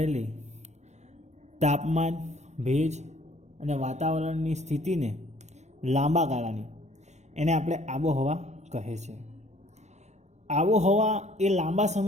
તાપમાન, ભેજ અને વાતાવરણની સ્થિતિને લાંબા ગાળાની એને આપણે આબોહવા કહે છે. આબોહવા એ લાંબા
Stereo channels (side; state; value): left; late; 0.33 ms